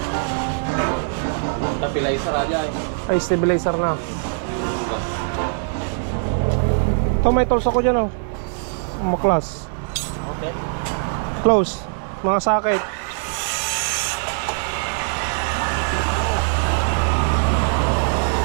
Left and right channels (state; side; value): silent; left; digital silence